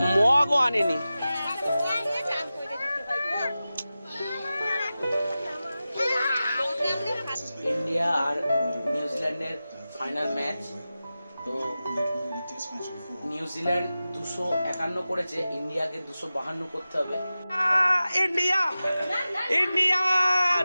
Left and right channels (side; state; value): both; inverted; correlation -0.95